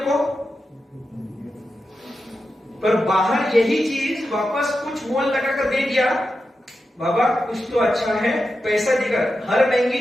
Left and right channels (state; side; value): normal; both; correlation 0.90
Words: पर बाहर यही चीज वापस कुछ मोल लगा कर दे दिया, बाबा कुछ तो अच्छा है, पैसा देकर। हर महंगी